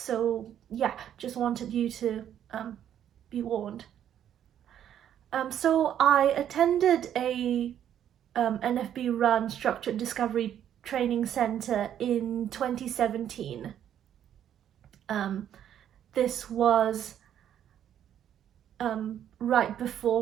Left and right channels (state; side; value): quieter; left; 10.1 dB